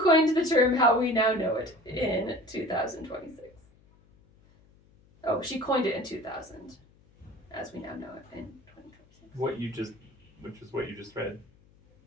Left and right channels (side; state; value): left; noise; hum, 29 dB below the sound